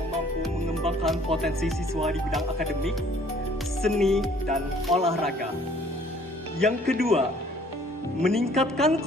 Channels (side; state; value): both; normal; correlation 0.58